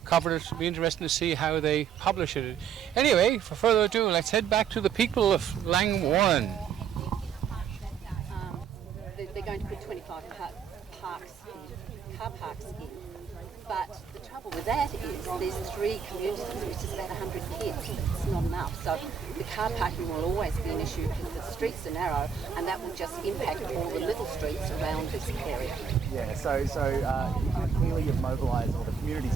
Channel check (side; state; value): left; quieter; 7.2 dB